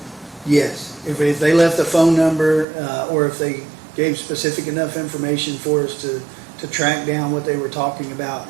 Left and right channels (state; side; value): drops out; left; at 2.7 s